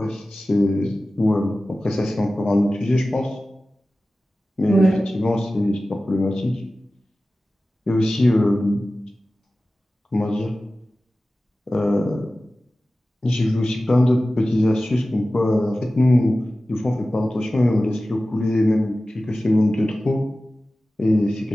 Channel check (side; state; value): both; normal; correlation 0.96